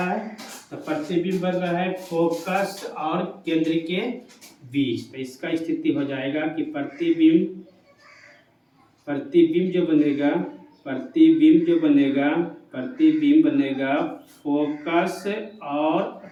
है, तो प्रतिबिंब बन रहा है फोकस और केंद्र के बीच। तो इसका स्थिति हो जाएगा कि प्रतिबिंब जो बनेगा फोकस और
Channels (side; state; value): both; identical; correlation 1.00